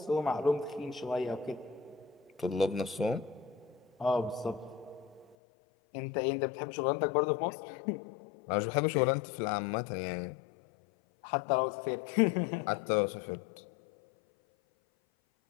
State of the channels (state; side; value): drops out; right; at 5.4 s